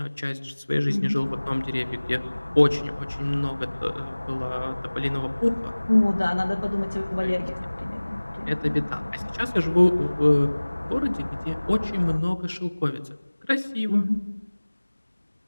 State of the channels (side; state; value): both; inverted; correlation -1.00